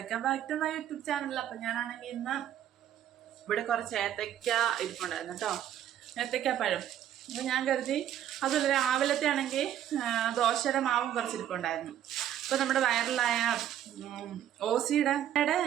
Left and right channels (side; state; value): left; quieter; 10.9 dB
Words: back to my YouTube channel. അപ്പം ഞാനാണെങ്കിൽ ഇന്ന് ഇവിടെ കുറച്ച് ഏത്തയ്ക്ക ഇരിപ്പുണ്ടായിരുന്നു കേട്ടോ, ഏത്തയ്ക്കാപ്പഴം. അപ്പം ഞാൻ കരുതി അതുപോലെ രാവിലത്തെ ആണെങ്കിൽ ദോശയുടെ മാവും കുറച്ച് ഇരിപ്പുണ്ടായിരുന്നു. അപ്പോൾ നമ്മുടെ വൈറലായ ഓസിയുടെ